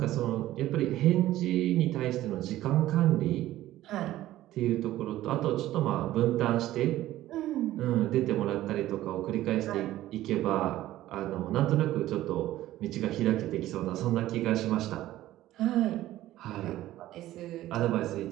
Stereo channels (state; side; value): quieter; left; 14.7 dB